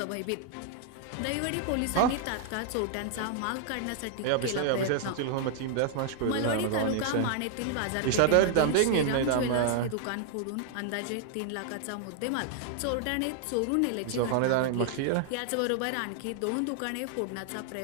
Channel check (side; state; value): both; different; correlation 0.00